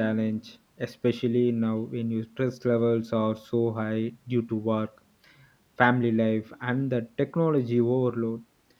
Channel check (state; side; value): identical; both; correlation 1.00